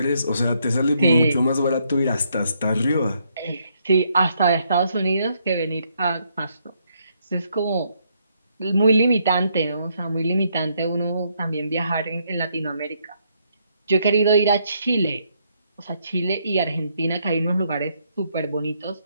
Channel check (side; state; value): both; inverted; correlation -0.73